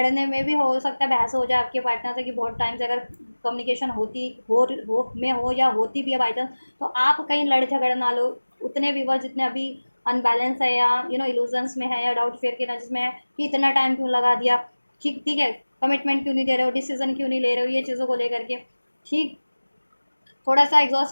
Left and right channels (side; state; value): both; inverted; correlation -1.00